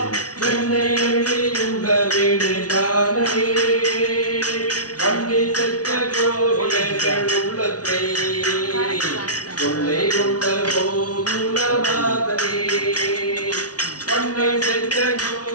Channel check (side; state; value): right; late; 0.68 ms